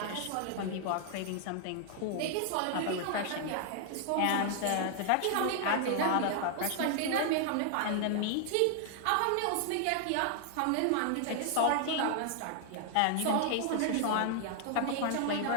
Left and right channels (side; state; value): both; different; correlation 0.00